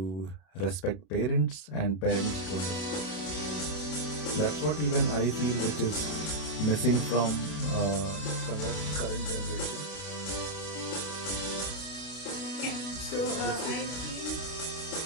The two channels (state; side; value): late; right; 32 ms